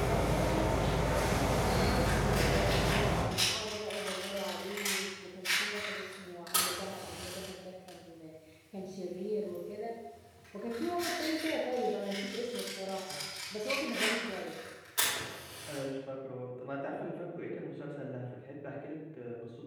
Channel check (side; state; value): both; identical; correlation 1.00